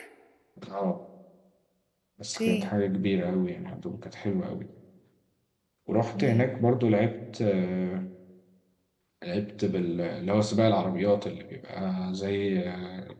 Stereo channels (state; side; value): identical; both; correlation 1.00